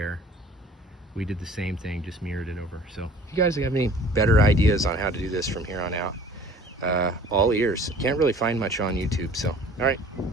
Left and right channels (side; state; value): both; normal; correlation 0.49